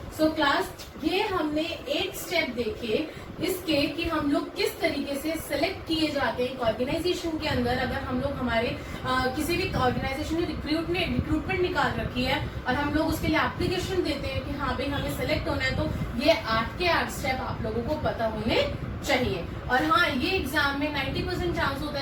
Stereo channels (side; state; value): both; identical; correlation 1.00